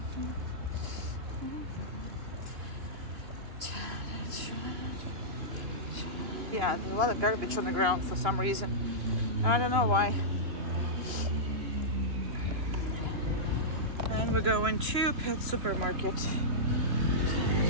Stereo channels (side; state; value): left; late; 2.9 ms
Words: Yeah, there's a lot of garbage on the ground for some reason. I don't know why. And we're going to Pet Supermarket.